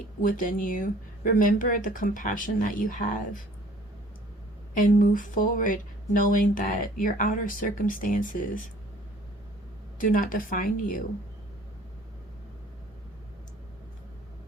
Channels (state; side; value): normal; both; correlation 0.53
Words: within you. Remember the compassion that you have. And move forward knowing that your outer circumstances do not define you.